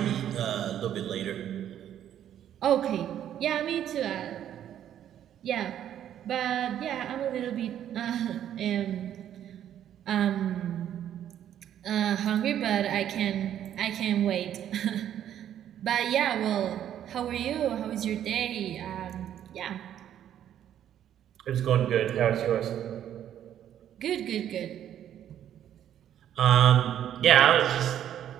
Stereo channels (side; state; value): left; quieter; 10.6 dB